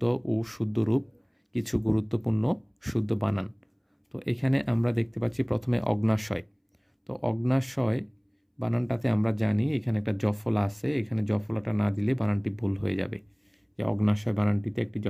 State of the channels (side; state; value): both; identical; correlation 1.00